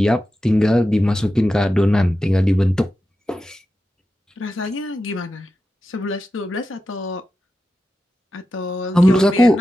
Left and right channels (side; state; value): both; normal; correlation 0.91